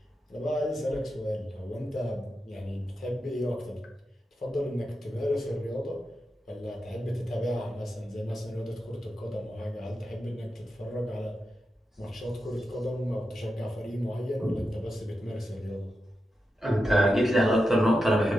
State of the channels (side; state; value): both; normal; correlation 0.89